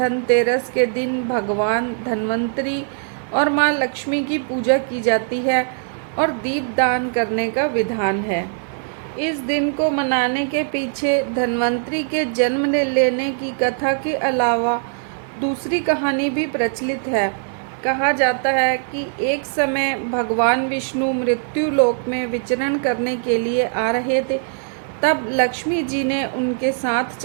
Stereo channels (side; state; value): left; silent; digital silence